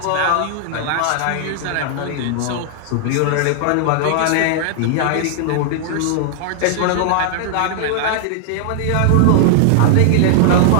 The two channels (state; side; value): different; both; correlation -0.01